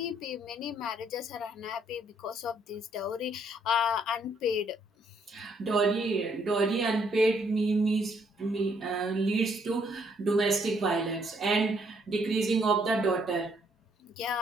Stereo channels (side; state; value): both; normal; correlation 0.69